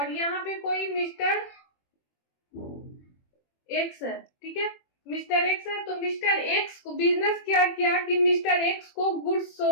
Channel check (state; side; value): late; right; 21 ms